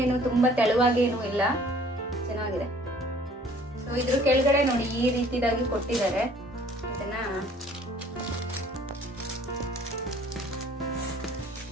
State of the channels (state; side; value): normal; both; correlation 0.55